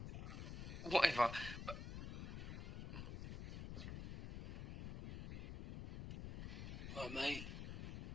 whatever. But what, mate?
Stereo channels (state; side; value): noise; left; rumble, 6 dB below the sound